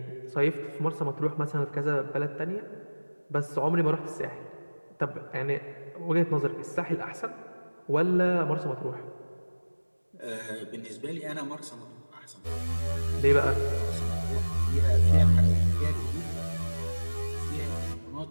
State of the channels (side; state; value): both; inverted; correlation -1.00